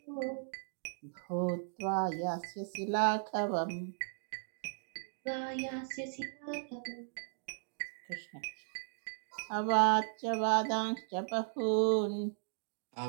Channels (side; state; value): left; silent; digital silence